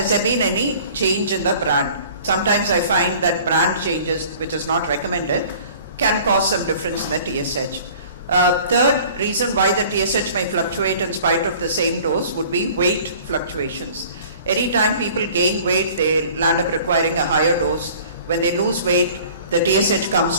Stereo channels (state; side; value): inverted; both; correlation -0.48